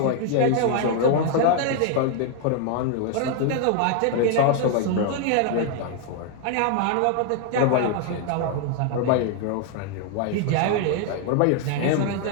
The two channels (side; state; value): both; different; correlation 0.00